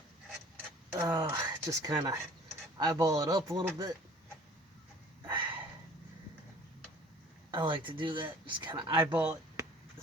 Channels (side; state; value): both; normal; correlation 0.49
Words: just kind of eyeball it up a little bit. I like to do that, just kind of eyeball it,